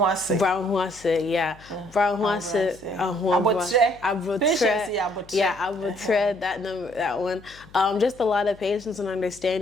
yeah. Brown huase, abutre, that one. Just a lot of patience and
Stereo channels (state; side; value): noise; left; hum, 24 dB below the sound